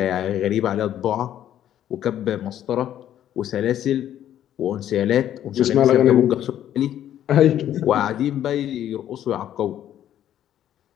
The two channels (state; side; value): quieter; right; 11.2 dB